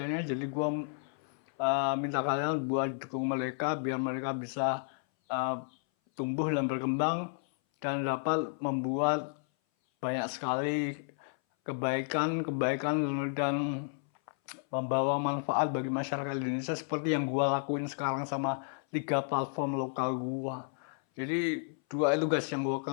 Jadi gue minta kalian buat dukung mereka biar mereka bisa tumbuh dan berkembang dan dapat membuat banyak sekali kebaikan dan membawa manfaat bagi masyarakat Indonesia seperti yang gua lakuin sekarang sama 3 platform lokal gua. Jadi dua itu guys yang gua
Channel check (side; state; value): right; silent; 56 dB below the other